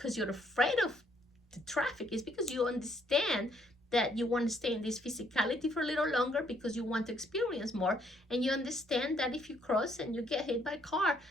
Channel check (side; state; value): both; normal; correlation 0.69